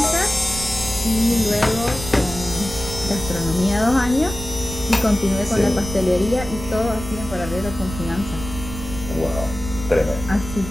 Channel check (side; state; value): right; noise; rumble, 10 dB below the sound